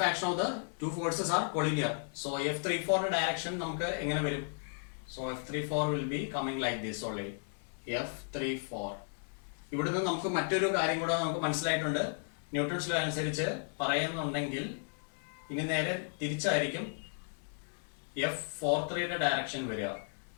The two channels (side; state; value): right; silent; digital silence